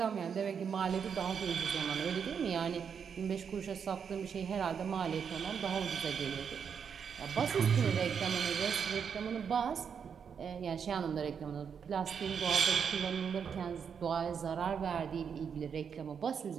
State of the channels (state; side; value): quieter; left; 7.0 dB